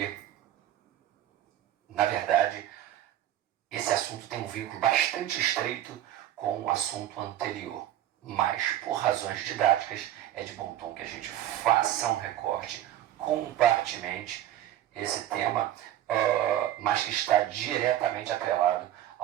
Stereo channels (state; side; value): quieter; left; 12.5 dB